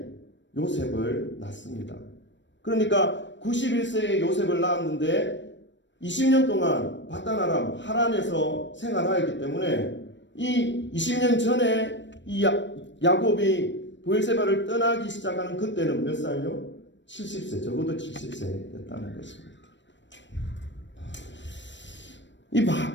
요셉을 낳습니다. 그러니까 91세의 요셉을 낳았는데 20년 동안 바단-아람 하란에서 생활하였기 때문에 이 20년 전에 이 야곱이 브엘세바를 떠나기 시작하는 그때는 몇 살요? 70세, 적어도 70세였다는 것입니다. 이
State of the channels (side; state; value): right; late; 0.53 ms